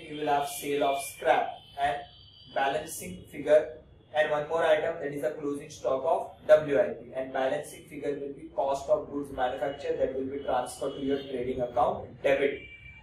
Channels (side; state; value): both; identical; correlation 1.00